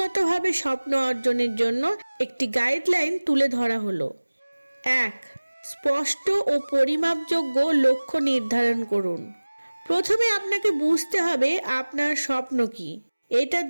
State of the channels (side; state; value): both; inverted; correlation -1.00